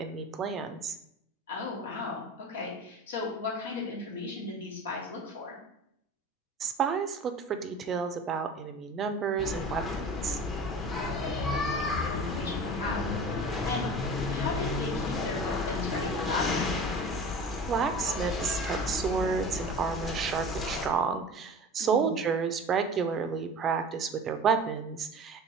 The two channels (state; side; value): normal; both; correlation 0.37